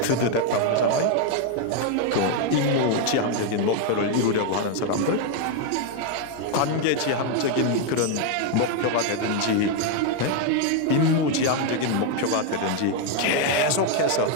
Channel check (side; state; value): both; different; correlation 0.01